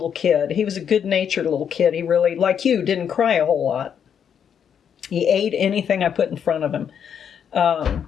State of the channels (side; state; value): right; quieter; 8.1 dB